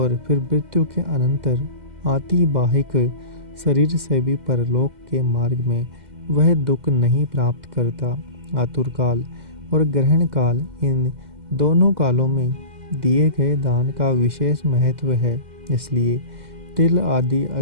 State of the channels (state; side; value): late; left; 2.1 ms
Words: फिर मृत्यु के अनंतर आतिबाहिक शरीर से भी परलोक के मार्ग में वह दुख नहीं प्राप्त करता। आतुर काल और ग्रहण काल, इन दोनों कालों में दिए गए दान का विशेष महत्व है, इसलिए तिल आदि